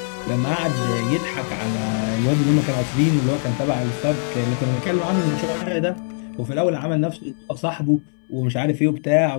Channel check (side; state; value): right; silent; 65 dB below the other